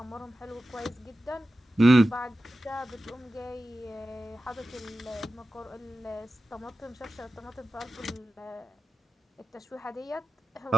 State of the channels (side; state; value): both; normal; correlation 0.93